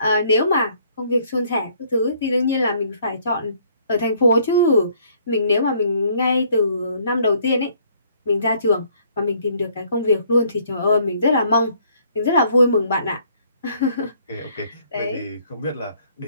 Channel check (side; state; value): both; inverted; correlation -0.63